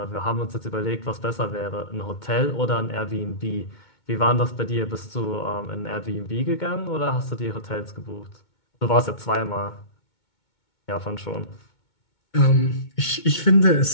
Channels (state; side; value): late; right; 2.2 ms